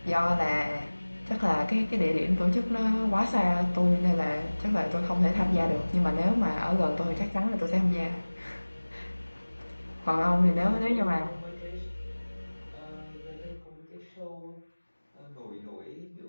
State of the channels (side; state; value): both; inverted; correlation -1.00